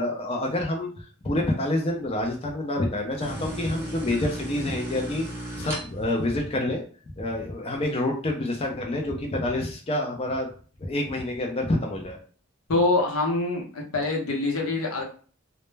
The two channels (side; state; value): both; normal; correlation 0.38